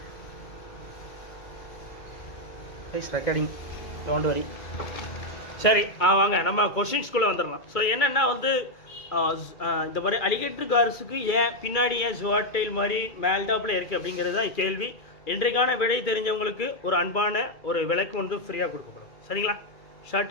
Please recording, don't worry. சரி, வாங்க நம்ம கொஷின்ஸ்குள்ளே வந்துடலாம். ஸோ என்னென்னா வந்து இந்த மாதிரி அலிகேட்டர் கார்ஸுக்கு ஏன் பின்னாடி ஏன் ஜுவாட்டைல் மாதிரி மேல்டாப்பில் இருக்குது அப்படிங்கிறது தான் கேள்வி. இன்றைக்கான விடை தெரிஞ்சவங்களுக்கு ஒரு அன்பான ஒரு விலைக்கு வந்து ஃப்ரீயாக கொடுக்கப்படும். சரிங்களா?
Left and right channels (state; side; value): late; right; 2.4 ms